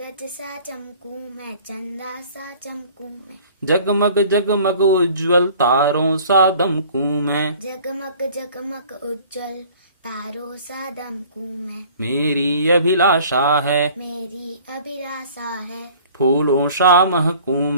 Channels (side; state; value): both; inverted; correlation -0.50